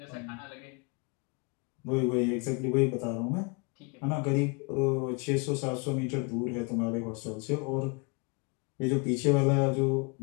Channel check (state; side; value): quieter; right; 30.9 dB